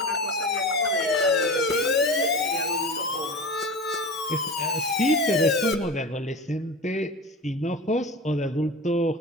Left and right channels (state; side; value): normal; both; correlation 0.30